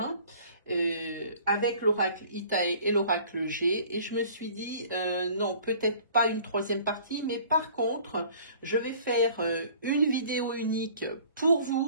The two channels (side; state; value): both; inverted; correlation -0.51